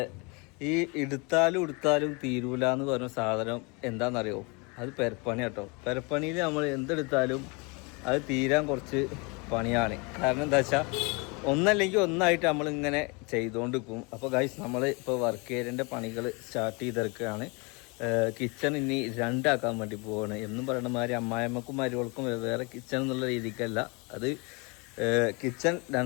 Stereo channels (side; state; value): right; quieter; 30.1 dB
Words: ഈ എടുത്താലും തീരൂല എന്ന് പറഞ്ഞ സാധനം എന്താണെന്നറിയോ? അത് പെരപ്പണി കേട്ടോ. പെരപ്പണിയിൽ നമ്മൾ എന്തെടുത്താലും അത് തീരാൻ കുറച്ച് പണിയാണ്. കാരണം എന്താ വെച്ചാൽ ഒന്നല്ലെങ്കിൽ ഒന്നായിട്ട് നമ്മളിങ്ങനെ ചെയ്തുകൊണ്ടിരിക്കും. അപ്പോൾ ഗൈസ്, നമ്മൾ ഇപ്പോൾ വർക്ക് ഏരിയൻ്റെ പണികൾ സ്റ്റാർട്ട് ചെയ്തെടുക്കുകയാണ്. കിച്ചൺ ഇനി രണ്ടാക്കാൻ വേണ്ടി പോവാണ്. എന്നും പറയുന്ന മാതിരി അമ്മായിമ്മക്കും മരുവൾക്കും വേറെ കിച്ചൺ എന്നുള്ള രീതിക്കല്ല, അത് കിച്ചൺ